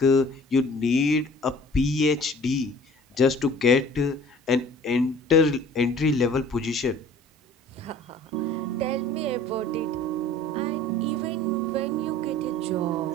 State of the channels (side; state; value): both; normal; correlation 0.48